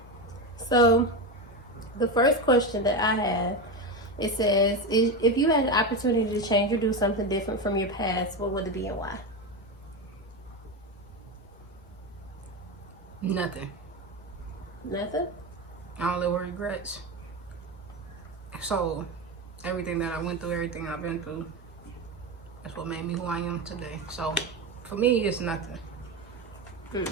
So the first question that I have, it says, if you had an opportunity to change or do something different from your past, what would it be and why? Nothing. Nothing? I don't live with regrets. So, everything that I went through, everything I've been through, that's what made me who I am today. So, for me, it's nothing.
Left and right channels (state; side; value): normal; both; correlation 0.17